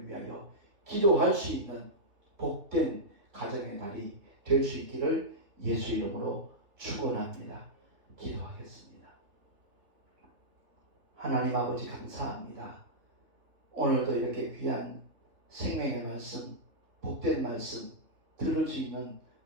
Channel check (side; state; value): left; late; 3.1 ms